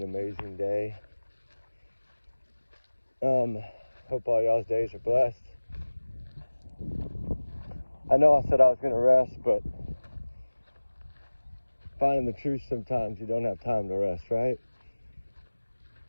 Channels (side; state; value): both; inverted; correlation -1.00